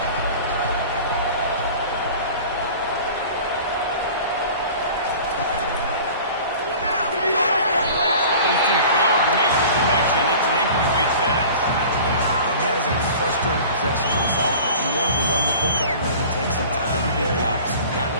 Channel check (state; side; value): inverted; both; correlation -0.42